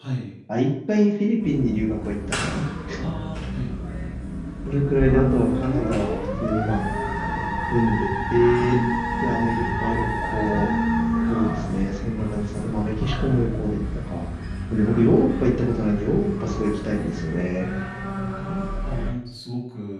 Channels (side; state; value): both; identical; correlation 1.00